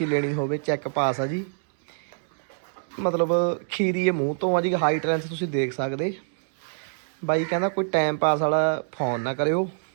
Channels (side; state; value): left; silent; digital silence